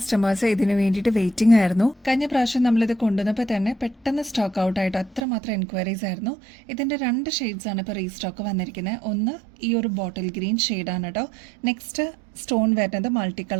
ഇതിനു വേണ്ടിയിട്ട് വെയിറ്റിംഗ് ആയിരുന്നു. കഴിഞ്ഞ പ്രാവശ്യം നമ്മളിത് കൊണ്ടുവന്നപ്പോൾ തന്നെ പെട്ടെന്ന് സ്റ്റോക്ക് ഔട്ട് ആയിട്ട് അത്രമാത്രം എൻക്വയറീസ് ആയിരുന്നു. ഇതിന്റെ 2 ഷെയ്ഡ്സ് ആണ് ഇപ്പോൾ റീസ്റ്റോക്ക് വന്നിരിക്കുന്നത്. ഒന്ന് ഈ ഒരു ബോട്ടിൽ ഗ്രീൻ ഷെയ്ഡാണ് കേട്ടോ. നെക്സ്റ്റ് സ്റ്റോൺ വരുന്നത് മൾട്ടി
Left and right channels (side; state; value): left; drops out; at 5.2 s